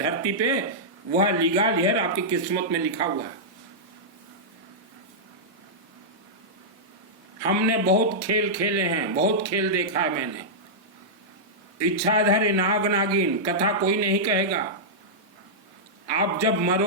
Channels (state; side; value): normal; both; correlation -0.11